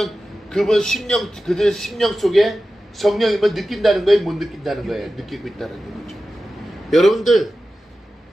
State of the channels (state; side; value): normal; both; correlation 0.94